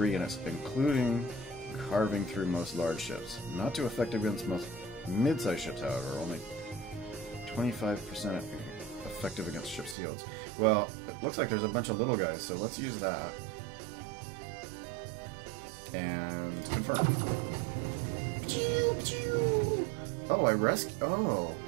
in it, including carving through most large ships. Not too effective against most mid-sized ships, however, only 25% effective against ship shields. Well, it looks like there's a bunch of little guys, so let's use that. And confirm. Oh,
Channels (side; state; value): left; drops out; at 10.0 s